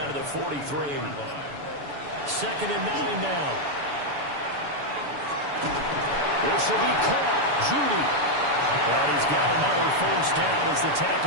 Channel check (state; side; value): late; left; 7.0 ms